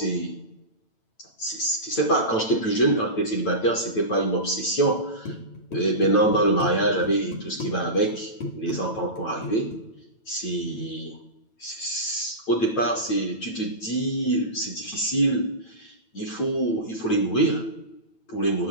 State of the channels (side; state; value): right; late; 9.0 ms